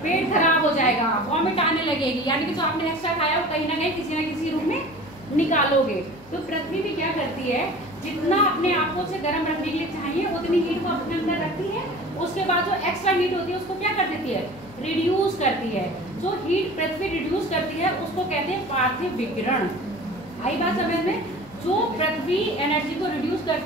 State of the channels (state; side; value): noise; left; hum, 25 dB below the sound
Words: पेट खराब हो जाएगा, वॉमिट आने लगेगी, यानी कि जो आपने एक्स्ट्रा खाया वो कहीं ना कहीं किसी न किसी रूप में निकालोगे। तो पृथ्वी भी क्या करती है, जितना अपने आप को से गर्म रखने के लिए चाहिए उतनी हीट को अपने अंदर रखती है, उसके बाद जो एक्स्ट्रा हीट होती है उसको क्या कर देती है, रिड्यूस करती है। जो हीट पृथ्वी रिड्यूस करती है उसको कहते हैं पार्थिव विकिरण। आई बात समझ में? जो पृथ्वी एनर्जी को रिड्यूस